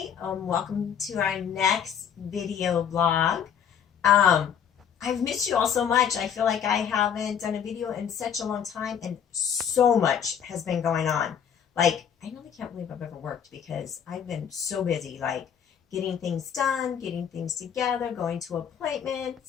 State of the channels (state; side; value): quieter; right; 8.2 dB